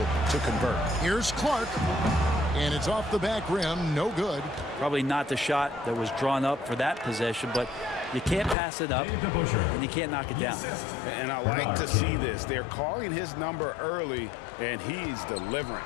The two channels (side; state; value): right; drops out; at 8.6 s